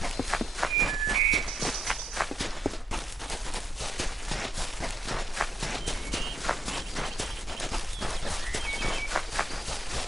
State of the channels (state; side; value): normal; both; correlation 0.79